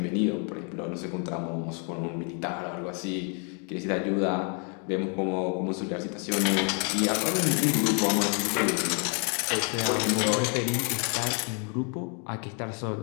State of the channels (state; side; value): quieter; right; 38.6 dB